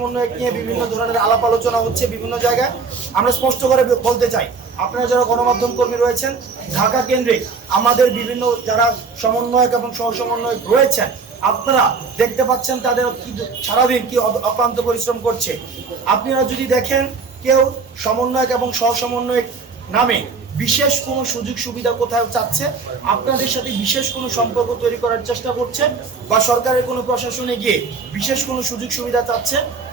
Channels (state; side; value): quieter; left; 4.7 dB